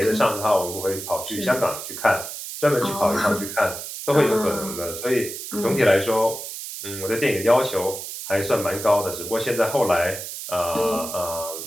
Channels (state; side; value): noise; right; hiss, 8 dB below the sound